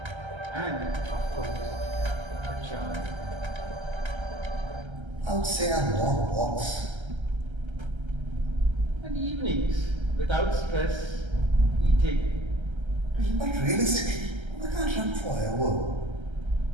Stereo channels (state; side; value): late; left; 1.3 ms